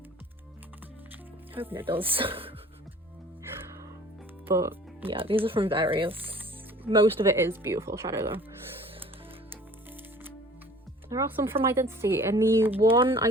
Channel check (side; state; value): both; normal; correlation 0.48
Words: Hoping it does. But yeah, these are from various. Most of it is Beautiful Shadow though. There are some from Identity. In the one